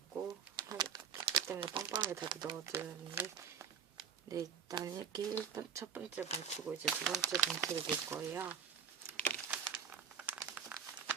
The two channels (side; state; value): left; quieter; 7.2 dB